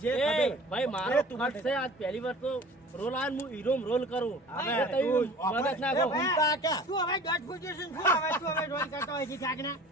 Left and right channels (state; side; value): normal; both; correlation 0.43